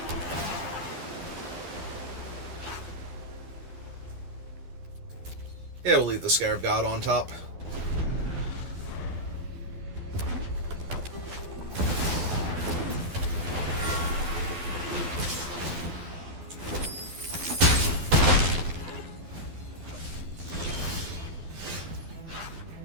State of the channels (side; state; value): left; late; 12 ms